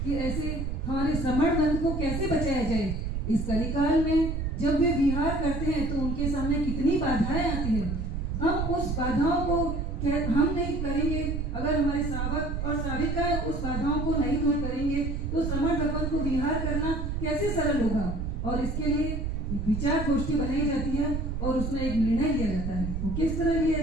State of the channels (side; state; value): right; noise; rumble, 2 dB below the sound